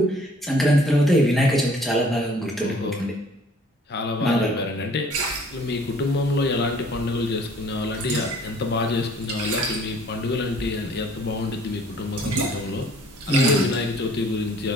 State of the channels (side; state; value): both; normal; correlation 0.56